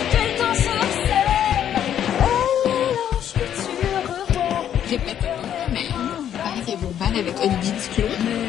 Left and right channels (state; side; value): quieter; right; 10.0 dB